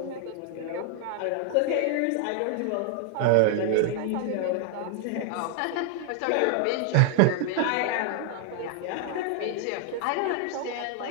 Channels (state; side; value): different; both; correlation 0.00